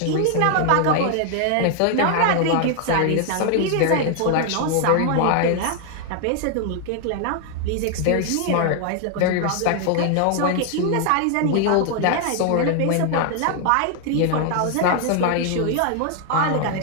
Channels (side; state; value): both; different; correlation 0.00